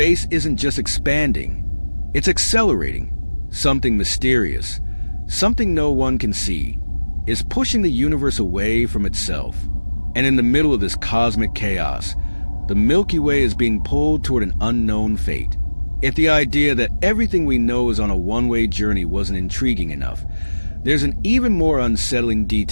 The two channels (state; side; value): inverted; both; correlation -1.00